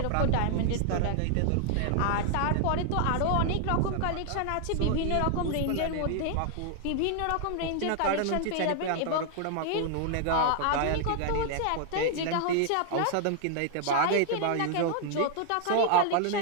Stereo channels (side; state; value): both; different; correlation 0.00